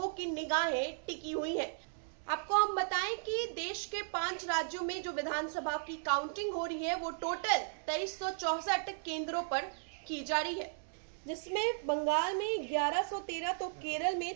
की निगाहें टिकी हुई हैं। आपको हम बताएं कि देश के 5 राज्यों में जो विधानसभा की काउंटिंग हो रही है वो टोटल 2364 केंद्रों पर की जा रही है, जिसमें बंगाल में 1113, तो केरल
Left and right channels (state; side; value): silent; left; digital silence